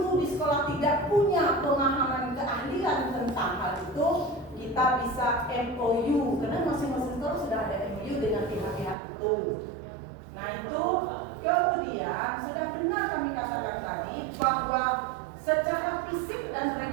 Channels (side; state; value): left; drops out; at 9.0 s